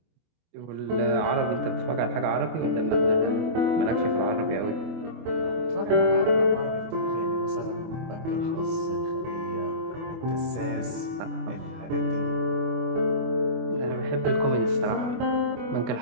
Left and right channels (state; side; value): late; left; 24 ms